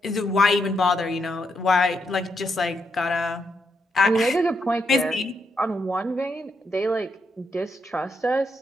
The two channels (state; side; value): normal; both; correlation 0.80